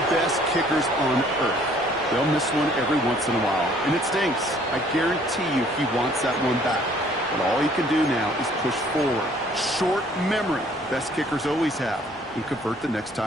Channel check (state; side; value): normal; both; correlation 0.59